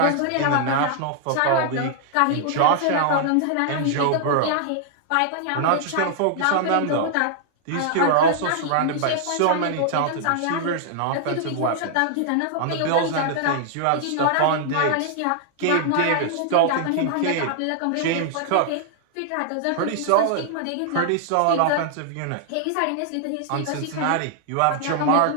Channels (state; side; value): different; both; correlation -0.01